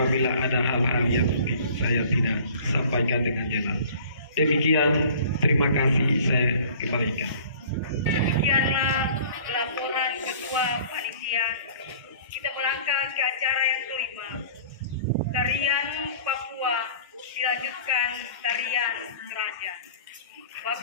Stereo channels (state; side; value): inverted; both; correlation -0.47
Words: ada hal-hal yang mungkin saya tidak sampaikan dengan jelas. Demikian, terima kasih, saya kembalikan. Demikianlah laporan Ketua Panitia. Kita melangkah ke acara yang kelima. Tarian Papua dilanjutkan tarian Raja.